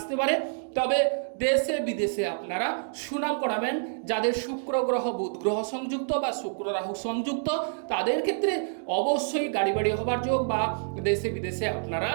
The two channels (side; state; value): left; silent; digital silence